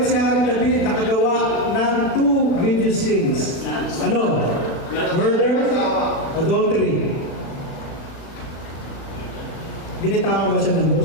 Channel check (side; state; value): right; late; 36 ms